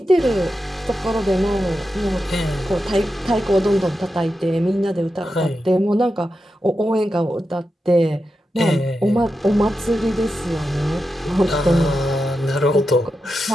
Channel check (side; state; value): both; normal; correlation 0.89